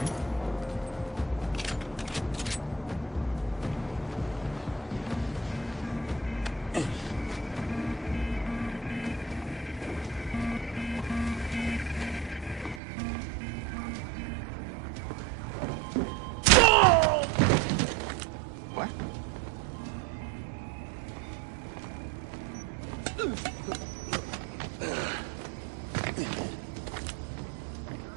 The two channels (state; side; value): drops out; left; at 12.8 s